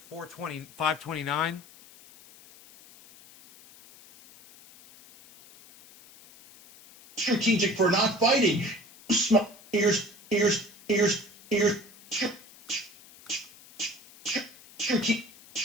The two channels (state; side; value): noise; left; hiss, 23 dB below the sound